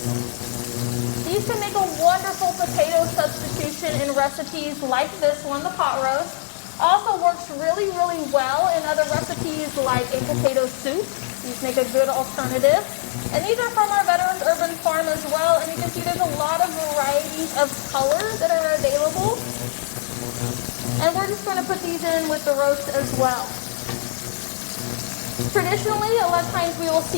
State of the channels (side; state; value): right; silent; 56 dB below the other